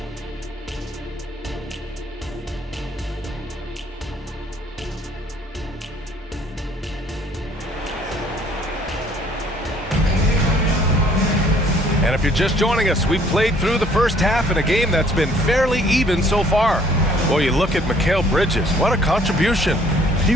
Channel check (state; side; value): normal; both; correlation 0.60